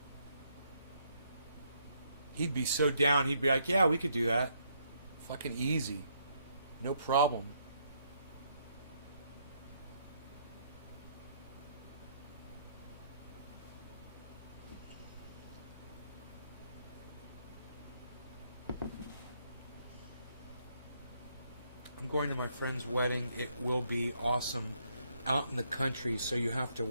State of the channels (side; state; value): both; inverted; correlation -0.73